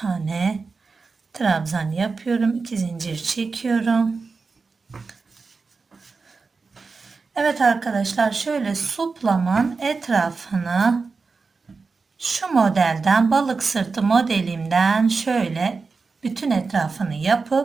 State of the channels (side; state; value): left; quieter; 4.5 dB